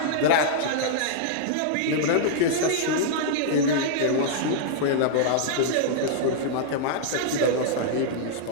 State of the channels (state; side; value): different; both; correlation -0.02